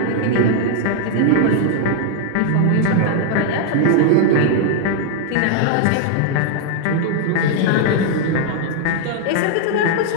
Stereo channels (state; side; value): different; both; correlation 0.00